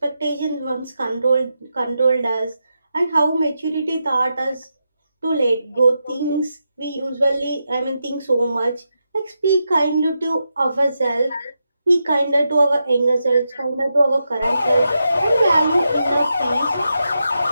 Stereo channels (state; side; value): inverted; both; correlation -0.86